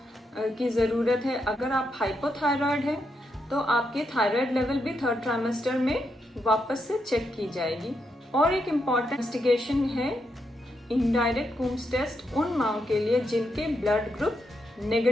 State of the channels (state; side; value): normal; both; correlation 0.81